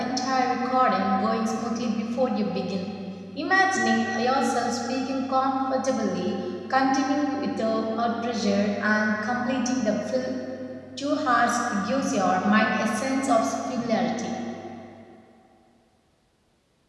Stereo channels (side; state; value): both; identical; correlation 1.00